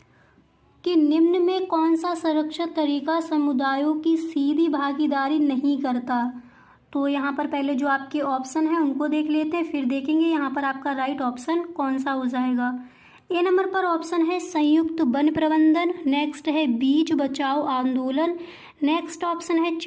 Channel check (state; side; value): identical; both; correlation 1.00